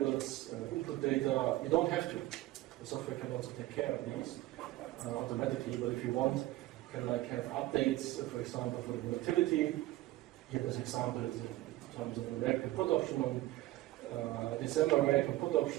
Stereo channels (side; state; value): left; quieter; 16.9 dB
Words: input data. You don't have to. The software can also take care of these automatically, but if you want, you can like have updates, for example, for the volatility. Here this example is in terms of the reactive put option on December reactive put